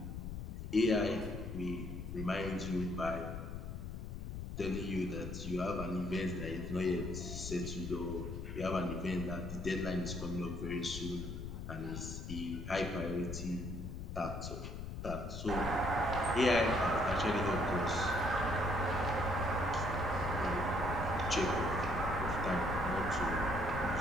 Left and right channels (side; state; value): left; noise; rumble, 7 dB below the sound